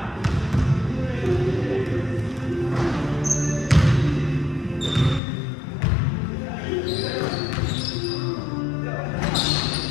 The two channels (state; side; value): drops out; right; at 5.2 s